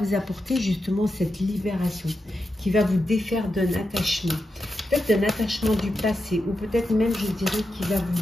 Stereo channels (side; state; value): both; normal; correlation 0.88